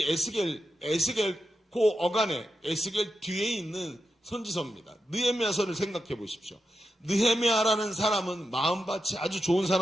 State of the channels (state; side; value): normal; both; correlation 0.88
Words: 에스겔 그 어간에 에스겔 뒤에 있는 선지서입니다. 느헤미야서를 생각해 보십시오. 느헤미야라는 사람은 마음밭이 아주 좋은